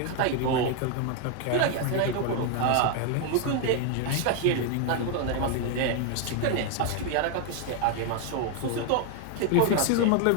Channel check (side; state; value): both; different; correlation 0.01